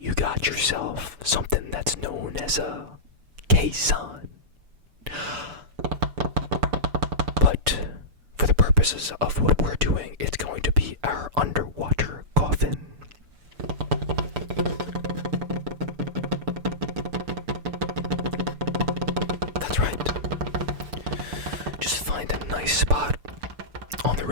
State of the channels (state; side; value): late; left; 6.9 ms